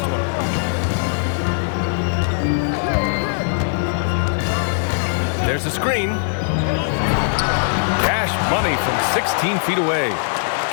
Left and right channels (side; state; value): right; silent; 66 dB below the other